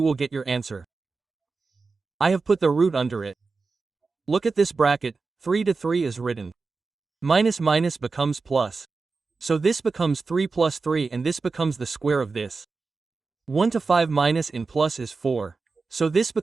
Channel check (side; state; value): left; quieter; 4.3 dB